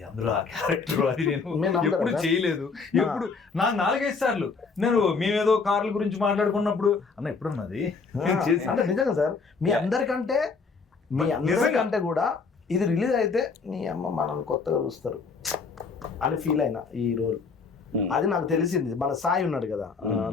అందులో ఆ క్యారెక్టర్, అది నేను ఎప్పుడు చేయలేదు. ఎప్పుడు నాకు 4-5 సార్లు నేను మేమేదో కార్ల గురించి మాట్లాడుకున్నప్పుడు అన్న ఎప్పుడన్నది అంటే నిజంగా సార్, మీ అందరికంటే కూడా ఇది రిలీజ్ అయితే నీ అమ్మ మనల్ని కొత్తగా చూస్తారు అని ఫీల్ అయినా ఈ రోల్ అది నాకు తెలిసింది. మన సాయి ఉన్నాడు కదా,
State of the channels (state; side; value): quieter; right; 4.8 dB